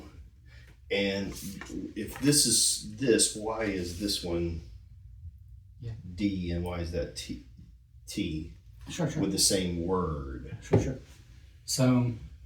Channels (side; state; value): both; identical; correlation 1.00